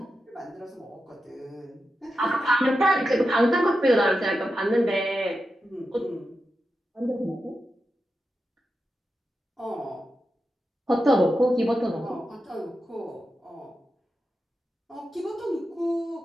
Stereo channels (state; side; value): normal; both; correlation 0.89